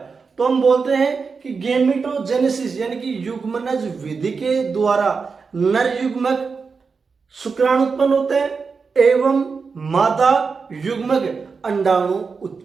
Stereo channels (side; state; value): left; quieter; 5.0 dB